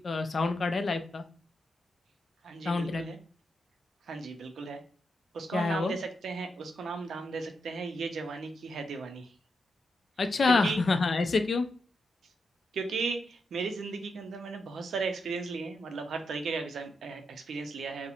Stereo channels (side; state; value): both; normal; correlation 0.84